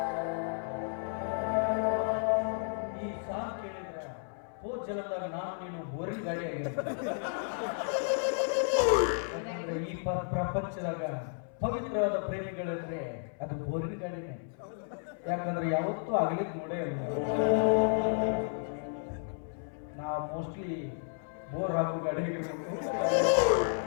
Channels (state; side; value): silent; right; 56 dB below the other